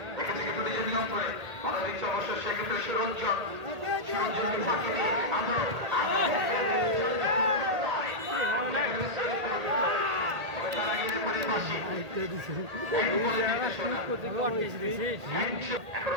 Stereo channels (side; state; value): left; late; 1.8 ms